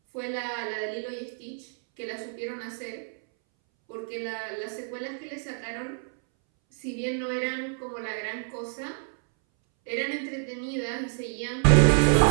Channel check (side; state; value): left; silent; 59 dB below the other